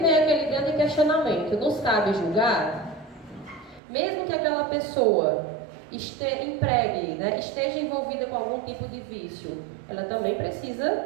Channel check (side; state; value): left; drops out; at 3.8 s